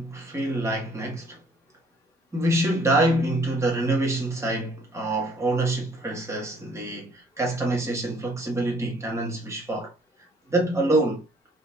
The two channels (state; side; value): normal; both; correlation 0.60